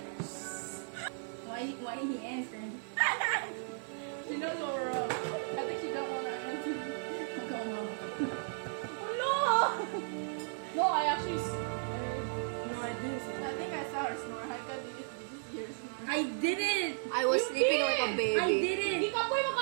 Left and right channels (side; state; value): left; silent; digital silence